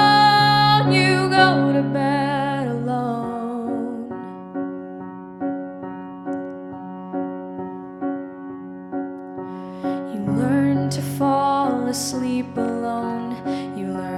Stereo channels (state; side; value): identical; both; correlation 1.00